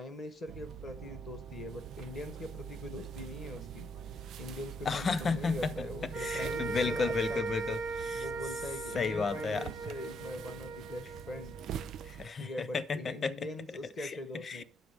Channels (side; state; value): both; normal; correlation 0.74